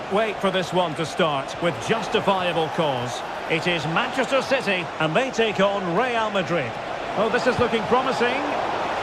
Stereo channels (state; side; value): identical; both; correlation 1.00